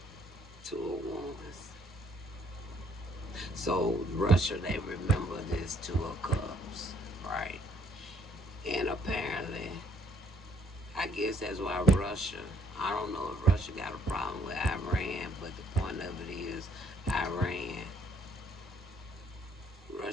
Two of Wands. So Russia, they remember this Two of Cups, right? And apparently, I guess that's why Russia, I don't know if Russia got a problem with Iran, but the point of it is Iran,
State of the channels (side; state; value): both; normal; correlation 0.67